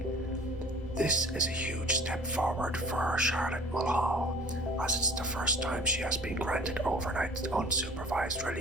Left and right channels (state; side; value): normal; both; correlation 0.47